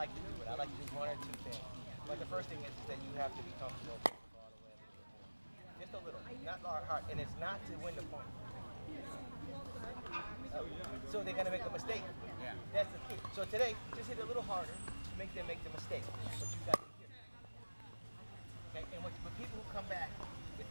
to do it. I like to do one or two things. But the first thing is that you have to be comfortable all the way up to the point. Just a little, not hard, and it's not to win the point. So they're gonna make a mistake. Yeah. That's the key. So today, just hit a little harder to make them make the mistake. But you got to hit. Okay, and when people who come back with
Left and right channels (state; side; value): inverted; both; correlation -1.00